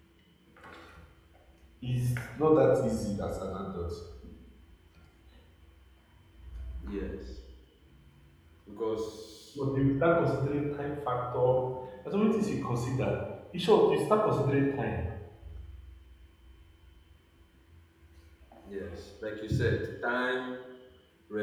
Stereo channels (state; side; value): identical; both; correlation 1.00